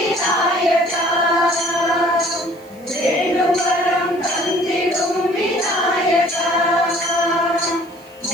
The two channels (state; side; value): noise; right; hiss, 28 dB below the sound